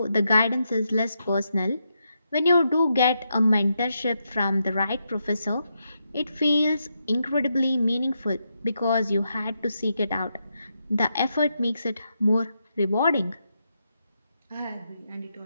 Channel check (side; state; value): both; inverted; correlation -0.83